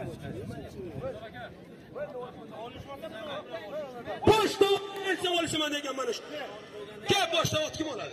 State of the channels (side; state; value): both; identical; correlation 1.00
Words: Boshda olsa olishman degan mana shu. Gap boshda ot kim